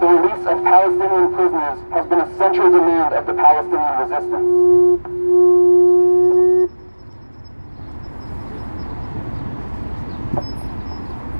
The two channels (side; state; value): both; inverted; correlation -1.00